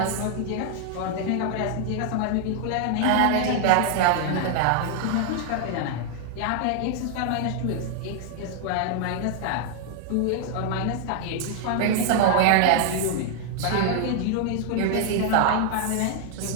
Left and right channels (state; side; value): different; both; correlation 0.00